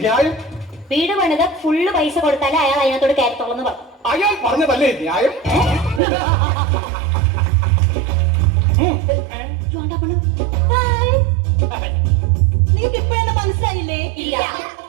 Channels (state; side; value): drops out; left; at 6.0 s